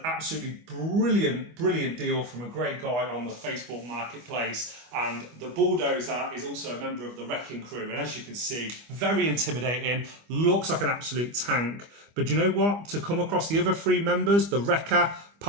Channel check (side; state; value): left; late; 25 ms